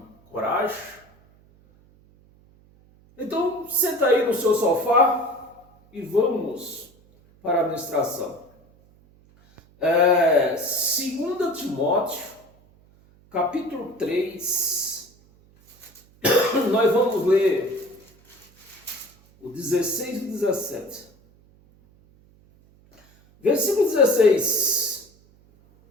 coragem? Então, senta aí no seu sofá e vamos para a ministração. 2 Timóteo, capítulo 3, nós vamos ler o 16 e o 17. Versículo 16.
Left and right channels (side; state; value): right; noise; hum, 29 dB below the sound